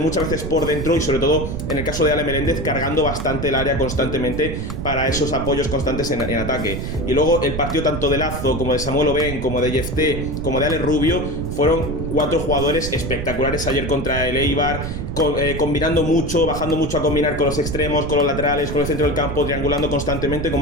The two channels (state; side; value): noise; right; rumble, 5 dB below the sound